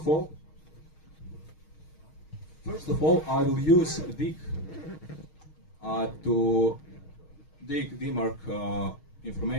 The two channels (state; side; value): late; right; 6.4 ms